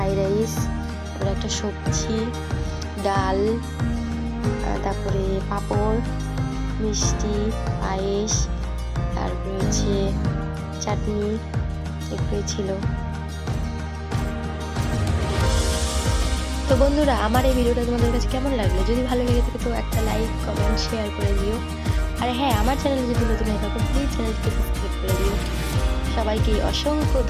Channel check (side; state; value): both; identical; correlation 1.00